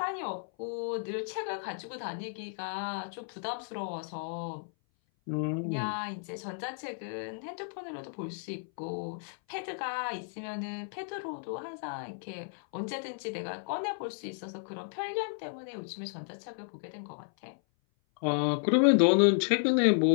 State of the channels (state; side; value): silent; right; 56 dB below the other